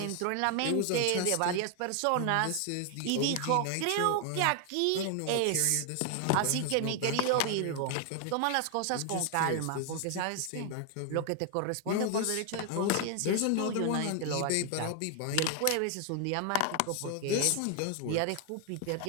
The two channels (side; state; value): both; different; correlation 0.00